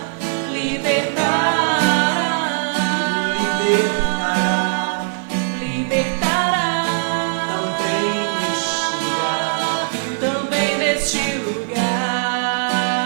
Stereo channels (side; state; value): left; silent; digital silence